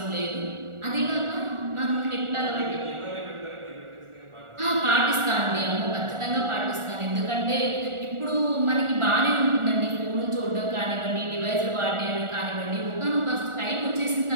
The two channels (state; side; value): late; left; 1.4 ms